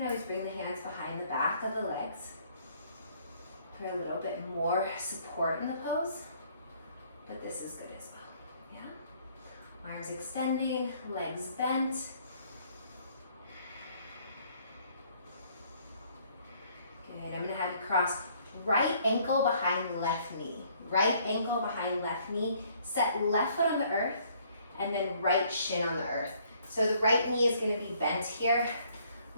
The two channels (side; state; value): both; inverted; correlation -0.63